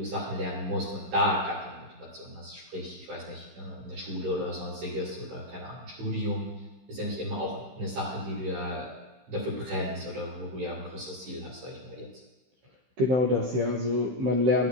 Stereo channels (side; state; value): left; late; 16 ms